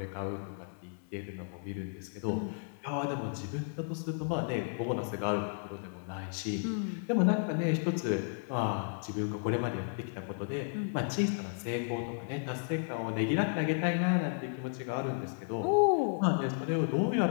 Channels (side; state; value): right; silent; digital silence